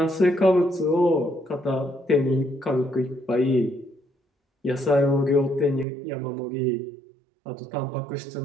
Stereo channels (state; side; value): drops out; left; at 5.9 s